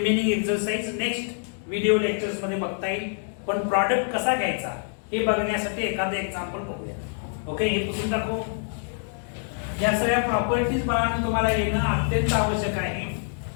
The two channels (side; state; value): right; silent; 61 dB below the other